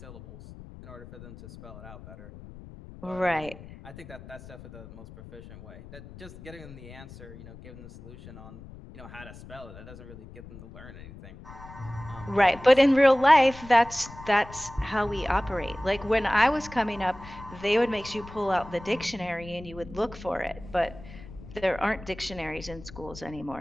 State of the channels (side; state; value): left; noise; rumble, 16 dB below the sound